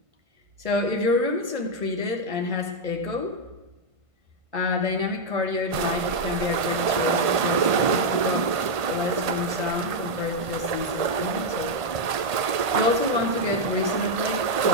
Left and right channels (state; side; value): late; left; 1.5 ms